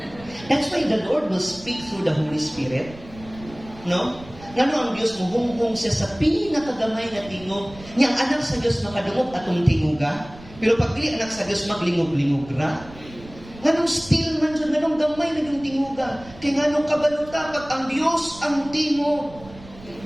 That's why the Lord will speak through the Holy Spirit. No? Ngano ang Diyos mo, hung siya sa pinakagamay na tingog. Niyang anak sa Diyos makadungog atong tinguga. Pero pag dili anak sa Diyos, maglingog-lingog ra. Nganong still man dyan, nganong gamay na yung tinguga. Kaya nganong kabaluta, pag ang Diyos ang tingog,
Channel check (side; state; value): right; noise; rumble, 19 dB below the sound